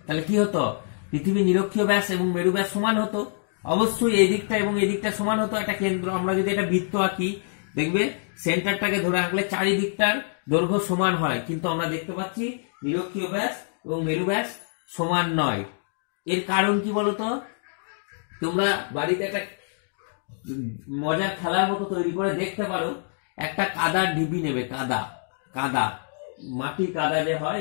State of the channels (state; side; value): silent; right; digital silence